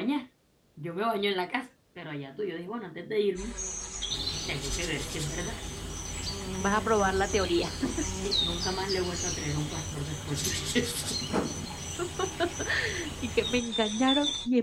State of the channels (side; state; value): both; identical; correlation 1.00